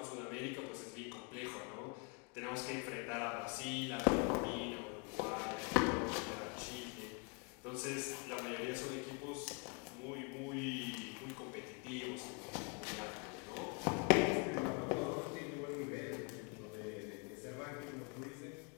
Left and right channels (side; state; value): right; quieter; 34.7 dB